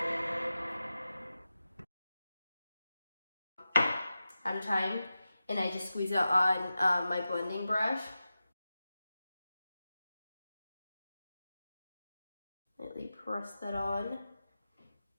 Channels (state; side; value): inverted; both; correlation -0.93